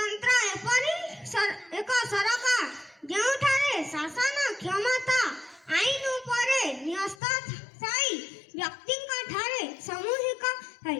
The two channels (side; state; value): right; drops out; at 7.2 s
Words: एपरि एक सरकार ଯେଉଁଠାରେ ଶାସନ କ୍ଷମତା ଆଇନ ଉପରେ ନ୍ୟସ୍ତ ଥାଇ ବ୍ୟକ୍ତିଙ୍କ ଠାରେ ସାମୂହିକ ଥାଏ।